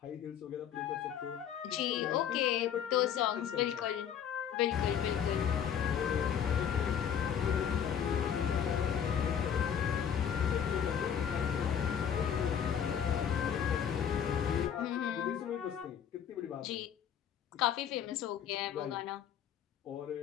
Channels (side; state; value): right; quieter; 8.6 dB